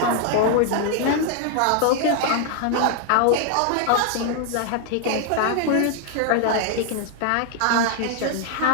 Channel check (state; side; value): different; both; correlation 0.00